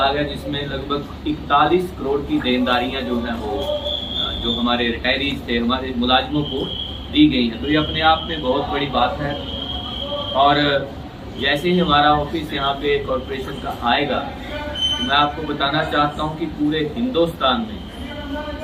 है जिसमें लगभग 41 करोड़ की देनदारियां जो हैं वो जो हमारे रिटायरीज थे, हमारे मुलाजिमों को दी गई हैं। तो ये अपने आप में बहुत बड़ी बात है। और जैसे ही हमारा ऑफिस यहाँ पे कॉरपोरेशन का आएगा तो मैं आपको बताना चाहता हूँ कि पूरे हिंदुस्तान में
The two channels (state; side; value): identical; both; correlation 1.00